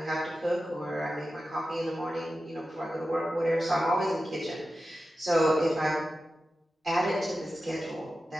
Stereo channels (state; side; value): normal; both; correlation 0.93